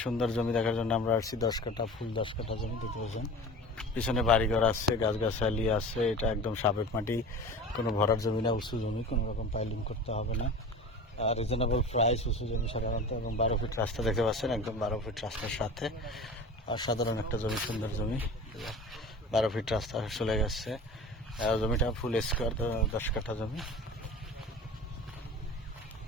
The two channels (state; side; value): normal; both; correlation 0.36